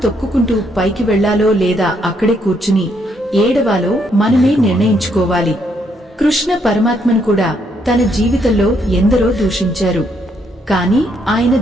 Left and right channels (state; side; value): normal; both; correlation 0.73